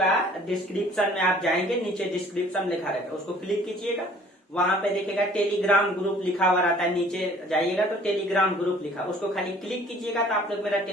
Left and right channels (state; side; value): normal; both; correlation 0.54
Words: डिस्क्रिप्शन में आप जाएंगे, नीचे डिस्क्रिप्शन लिखा रहता है, उसको क्लिक कीजिएगा। वहां पे देखिएगा टेलीग्राम ग्रुप लिखा हुआ रहता है, नीचे जाइएगा तो टेलीग्राम ग्रुप लिखा, उसको खाली क्लिक कीजिएगा तो आप लोग मेरा